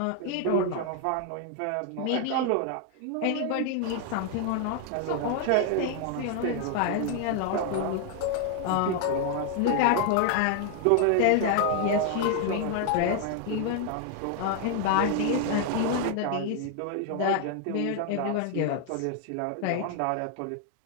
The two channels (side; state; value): both; different; correlation 0.00